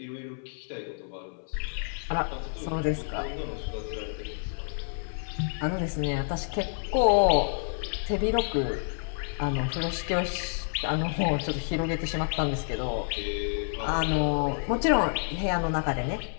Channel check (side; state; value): right; silent; 59 dB below the other